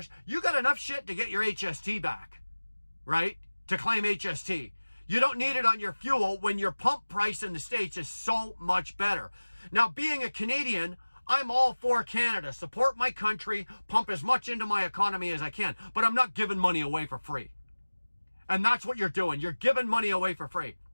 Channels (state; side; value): inverted; both; correlation -1.00